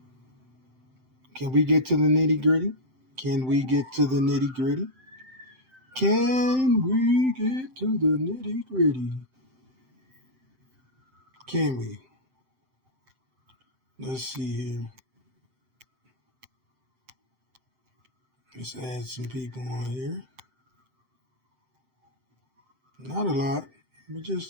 Can we get to the nitty gritty? Can we get to the nitty gritty? Can we get to the nitty gritty? Can we? Let's see here. Let's add some people on here. Not a lot, but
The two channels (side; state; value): left; late; 7.7 ms